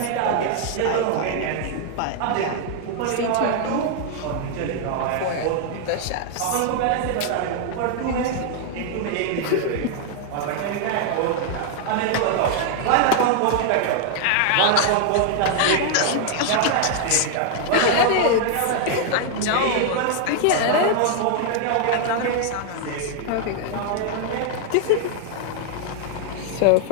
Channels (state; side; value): different; both; correlation 0.00